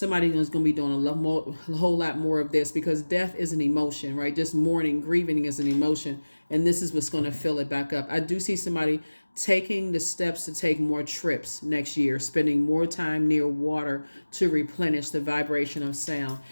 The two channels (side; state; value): both; inverted; correlation -1.00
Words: is going to be doing a whole lot more of this, because death is an emotion, right? Just mourning, grieving is an emotion, and this is what's going to fill it back up. I do see somebody taking the steps to take more trips next year, spending more time near water to replenish the vibration of sound.